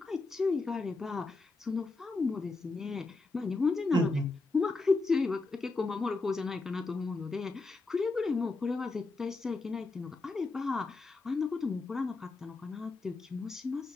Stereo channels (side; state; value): right; quieter; 3.5 dB